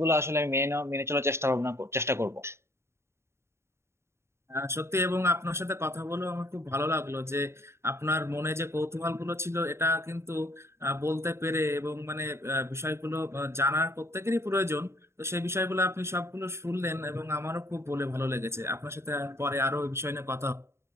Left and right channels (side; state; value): left; late; 0.13 ms